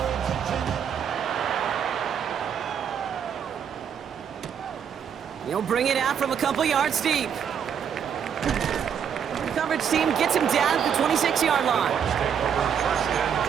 He'll bring it out from a couple yards deep. The coverage team gets him down at the 26-yard line.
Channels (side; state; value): left; quieter; 7.9 dB